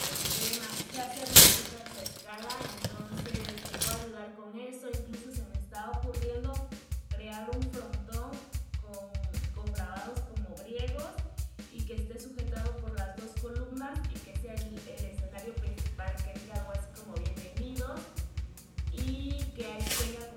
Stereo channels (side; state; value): both; identical; correlation 1.00